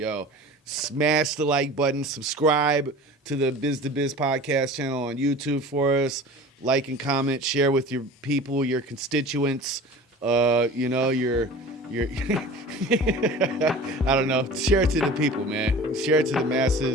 smash the like button, subscribe to the Biz to Biz podcast channel on YouTube for us. Like and comment, share with your people, your constituents, your I don't know. Share it to the people, man. Share it to the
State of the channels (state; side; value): normal; both; correlation 0.39